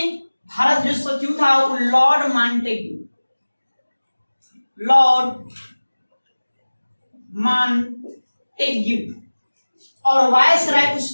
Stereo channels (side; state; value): both; inverted; correlation -1.00